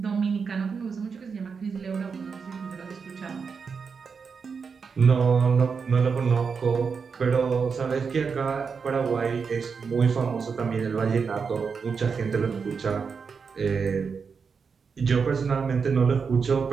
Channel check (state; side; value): quieter; left; 5.6 dB